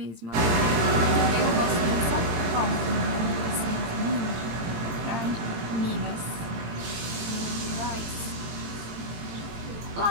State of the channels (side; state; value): left; late; 18 ms